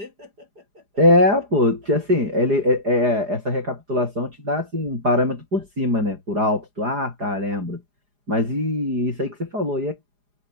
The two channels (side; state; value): left; late; 4.9 ms